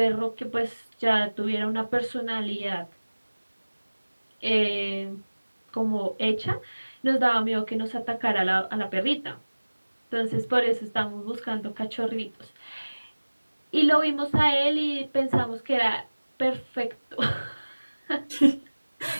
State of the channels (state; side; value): inverted; both; correlation -1.00